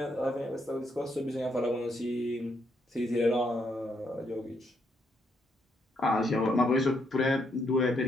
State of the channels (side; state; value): both; normal; correlation 0.76